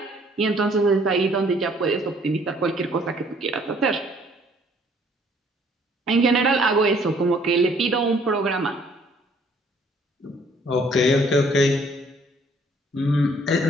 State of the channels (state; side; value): normal; both; correlation 0.61